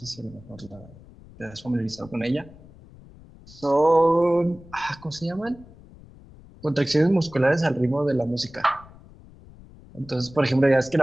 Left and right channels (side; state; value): left; noise; rumble, 22 dB below the sound